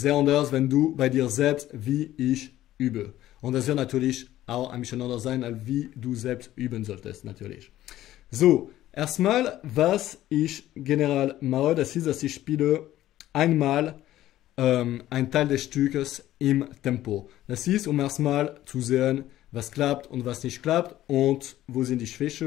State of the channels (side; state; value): right; quieter; 14.0 dB